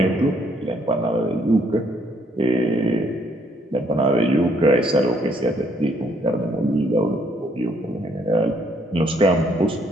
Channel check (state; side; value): normal; both; correlation 0.68